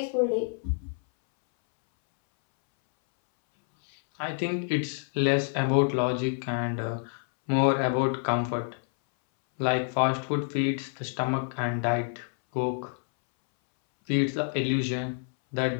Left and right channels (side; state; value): right; silent; 60 dB below the other